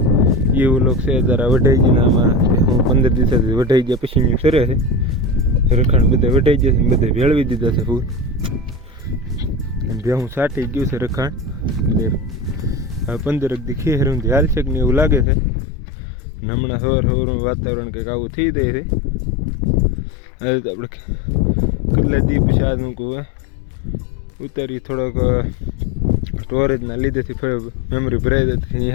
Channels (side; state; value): right; drops out; at 15.2 s